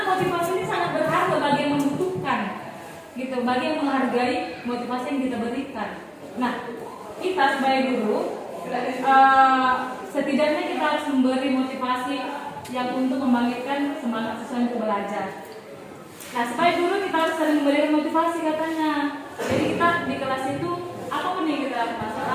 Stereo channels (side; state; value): both; identical; correlation 1.00